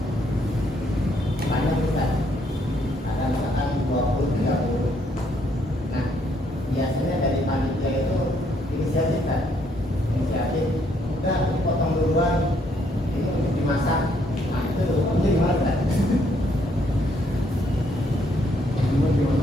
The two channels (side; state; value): both; normal; correlation 0.70